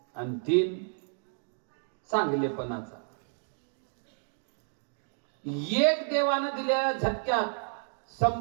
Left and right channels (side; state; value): left; silent; 57 dB below the other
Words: आणि 3 चांगलेपणाचा. एक देवानं दिलेल्या झटक्यात